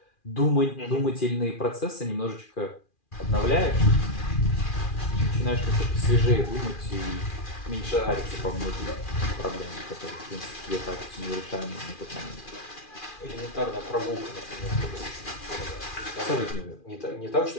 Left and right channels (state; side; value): late; right; 2.4 ms